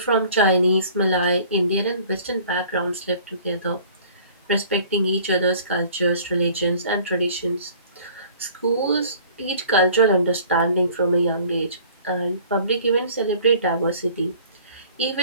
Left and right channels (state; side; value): inverted; both; correlation -0.51